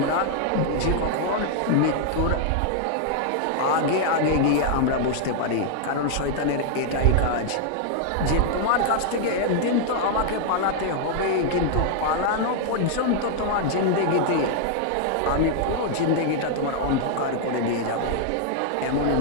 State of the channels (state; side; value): different; both; correlation 0.00